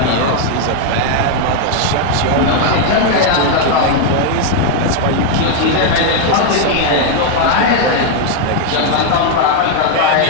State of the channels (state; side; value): different; both; correlation 0.00